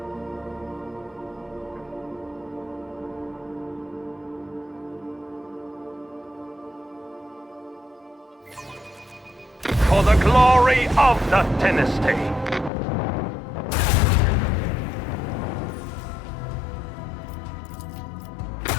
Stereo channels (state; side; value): drops out; right; at 12.7 s